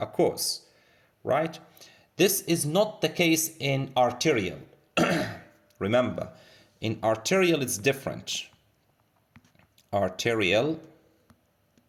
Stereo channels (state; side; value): identical; both; correlation 1.00